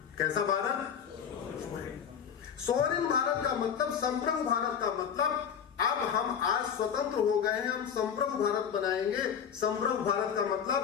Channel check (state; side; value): quieter; right; 7.8 dB